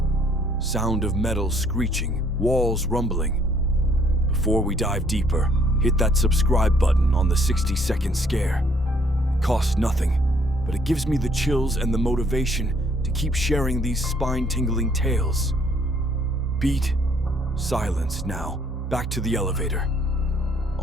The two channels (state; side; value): normal; both; correlation 0.64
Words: Sound of metal screeching, walls rumbling. Before we dive deeper, hit that subscribe button on the 60-second scare. It costs nothing, but it gives me the chills and the motivation to keep sharing these spine-tingling tales. Beat. Silence now. Back to the elevator.